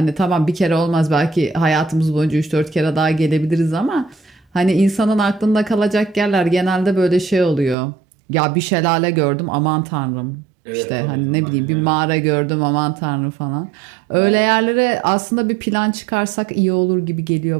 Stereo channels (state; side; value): drops out; left; at 7.8 s